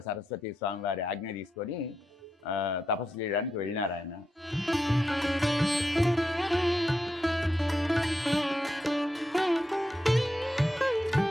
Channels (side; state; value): both; normal; correlation 0.85